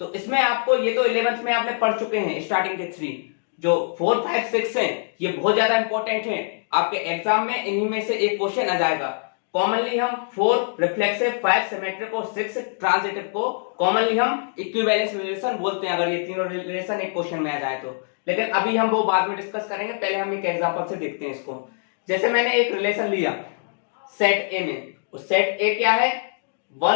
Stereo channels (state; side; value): silent; right; digital silence